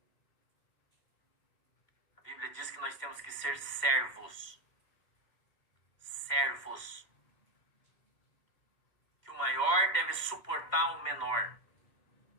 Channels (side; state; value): right; late; 2.0 ms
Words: A Bíblia diz que nós temos que ser servos. Servos. Que o maior deve suportar o menor.